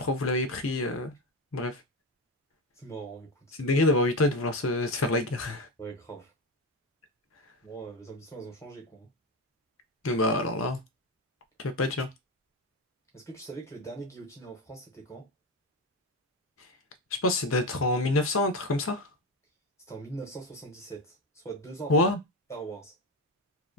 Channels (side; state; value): both; normal; correlation 0.17